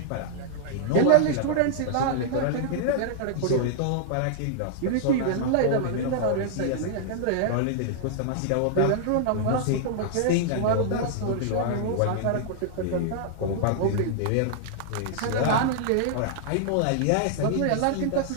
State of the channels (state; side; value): different; both; correlation -0.01